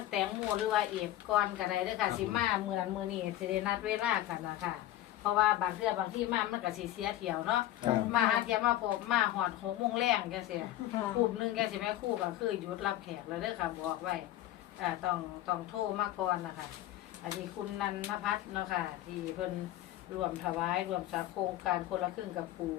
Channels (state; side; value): quieter; right; 13.9 dB